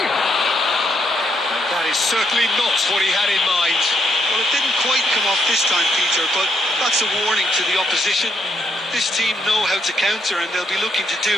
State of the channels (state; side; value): normal; both; correlation 0.76